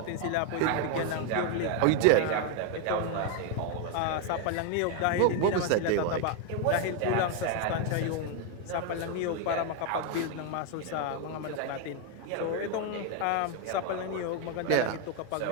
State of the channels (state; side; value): different; both; correlation 0.01